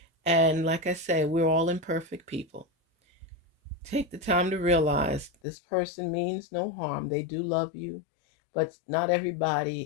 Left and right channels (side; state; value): right; drops out; at 5.3 s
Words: And like I say, we're all imperfect people. Take the time to realize this person means no harm. They do love you, but not